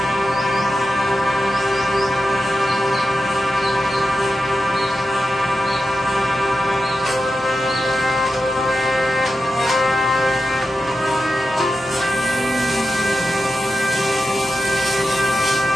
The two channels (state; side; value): normal; both; correlation 0.90